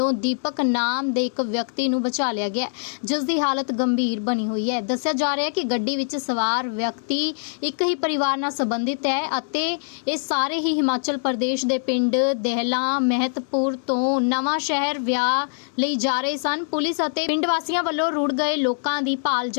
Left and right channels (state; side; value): silent; right; digital silence